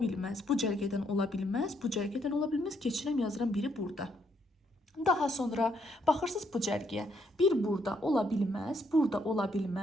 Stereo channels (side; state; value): both; normal; correlation 0.73